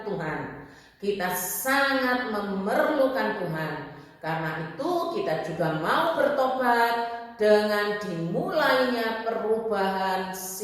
Tuhan, kita sangat memerlukan Tuhan. Karena itu kita juga mau bertobat dengan dimulainya perubahan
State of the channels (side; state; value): both; identical; correlation 1.00